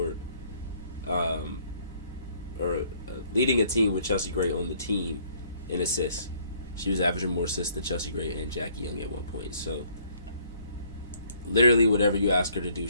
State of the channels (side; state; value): both; inverted; correlation -0.62